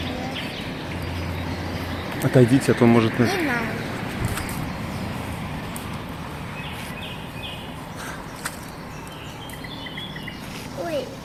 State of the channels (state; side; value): identical; both; correlation 1.00